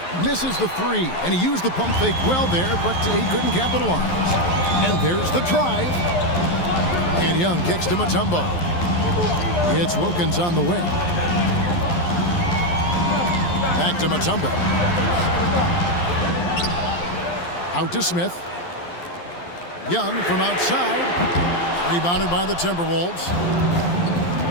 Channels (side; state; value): right; late; 11 ms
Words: Misses the 3, and he used the pump fake well there, but he couldn't capitalize. And there's the drive. And Young kicks to Mutombo. It's Wilkins on the wing. Back to Mutombo. Out to Smith. Young from outside. Rebounded by the Timberwolves.